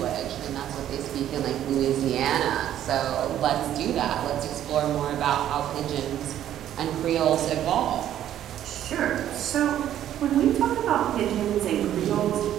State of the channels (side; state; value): left; quieter; 11.4 dB